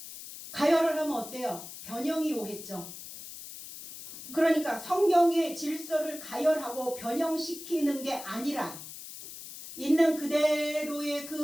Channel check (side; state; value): left; noise; hiss, 12 dB below the sound